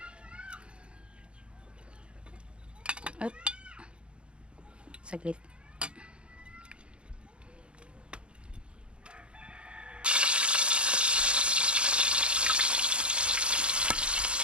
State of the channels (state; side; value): late; left; 0.057 ms